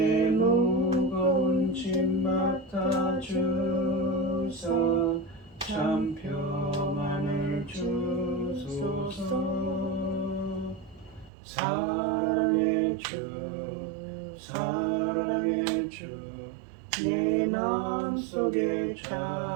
무거운 짐 맡아 주사 참 평안을 주소서. 사랑의 주 사랑의 주 내 마음속에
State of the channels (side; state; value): left; drops out; at 11.3 s